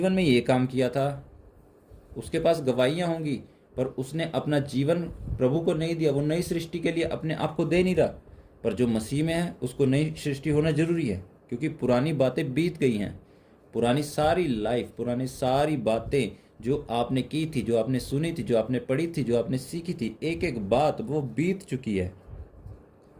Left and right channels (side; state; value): both; identical; correlation 1.00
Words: में ये काम किया था। उसके पास गवाहियाँ होंगी, पर उसने अपना जीवन प्रभु को नहीं दिया। वो नई सृष्टि के लिए अपने आप को दे नहीं रहा। पर जो मसीह में है उसको नई सृष्टि होना जरूरी है, क्योंकि पुरानी बातें बीत गई हैं। पुरानी सारी लाइफ, पुरानी सारी बातें जो आपने की थी, जो आपने सुनी थी, जो आपने पढ़ी थी, जो आपने सीखी थी, एक एक बात वो बीत चुकी है।